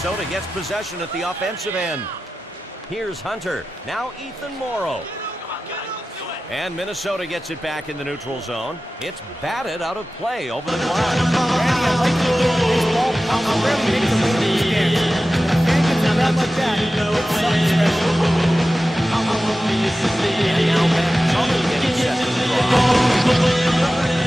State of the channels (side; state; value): both; normal; correlation 0.94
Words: gets possession at the offensive end. Here's Hunter. Now Ethan Morrow. And Minnesota gets it back in the neutral zone. It's batted out of play over the glass.